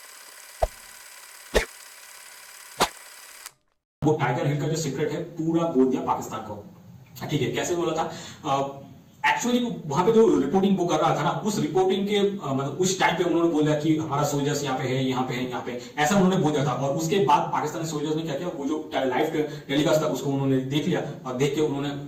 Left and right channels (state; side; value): identical; both; correlation 1.00